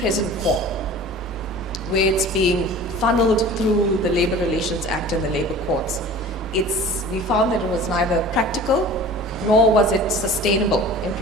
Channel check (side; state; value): both; normal; correlation 0.41